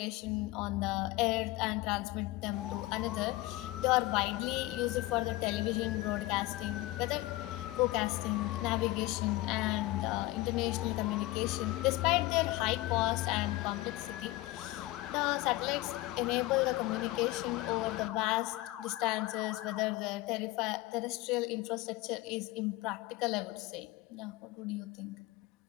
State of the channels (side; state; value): right; quieter; 18.8 dB